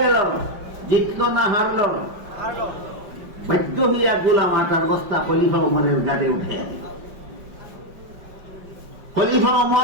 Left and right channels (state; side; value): late; left; 5.4 ms